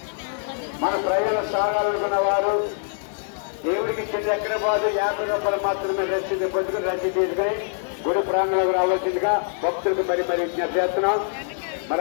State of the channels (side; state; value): right; silent; digital silence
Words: మన ప్రయాణం సాగాలనుకున్న వారు దేవుడికి చెంది ఎక్కడ పోదు 50 రూపాయలు మాత్రమే రసీదు పొందుకుని రసీదు తీసుకుని గుడి ప్రాంగణంలోకి రావాల్సిందిగా భక్తులకు మరి విజ్ఞప్తి చేస్తున్నాం. మరి